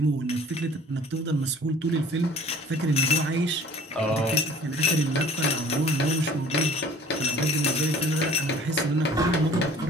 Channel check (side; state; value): both; normal; correlation 0.49